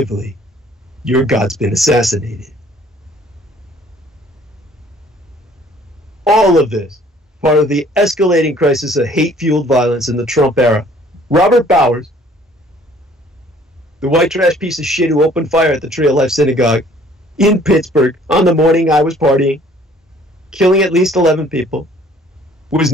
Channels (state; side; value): normal; both; correlation 0.57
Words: your God's been assassinated. All of this, part of the escalating crisis of hate-fueled violence in the Trump era. Robert Bowers, the white trash piece of shit who opened fire at the Tree of Life Synagogue in Pittsburgh on the morning I was partying, killing at least 11 people, was